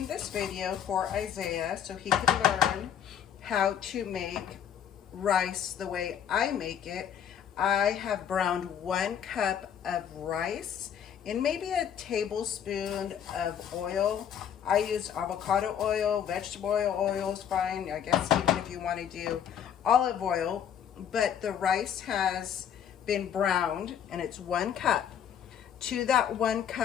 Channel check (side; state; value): right; quieter; 9.0 dB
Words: this video for Isaiah so he can learn how to make rice the way I make it. I have browned 1 cup of rice in maybe a tablespoon of oil. I used avocado oil, vegetable oil is fine. I guess even if you want to do olive oil, but the rice has been browned and it's 1 cup. To that 1